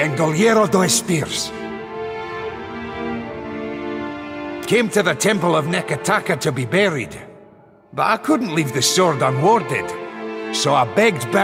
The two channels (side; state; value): both; identical; correlation 1.00